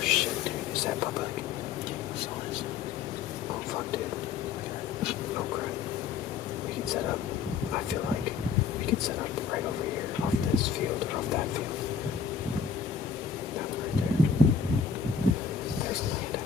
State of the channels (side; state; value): right; quieter; 6.3 dB